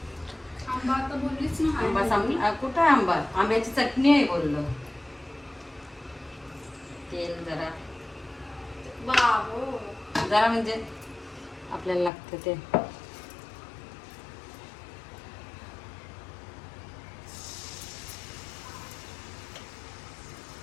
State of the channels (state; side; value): drops out; right; at 12.1 s